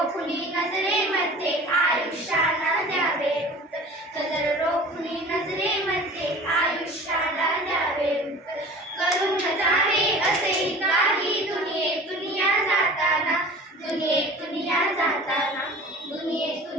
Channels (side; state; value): both; normal; correlation 0.41